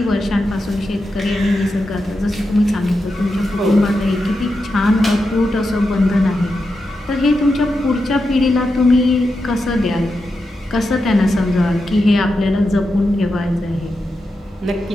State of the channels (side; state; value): both; normal; correlation 0.88